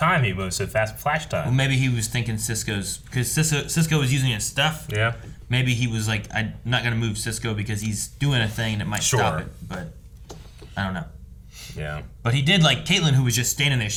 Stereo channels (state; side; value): identical; both; correlation 1.00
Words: He moves so fast, flash time. Well, maybe he was thinking Cisco's because Cisco was using his stuff. Yeah. Maybe he was like, I'm not gonna move Cisco because he's doing a thing that might stop it. But I don't know. Yeah. But he did like Caitlyn, who was just standing there.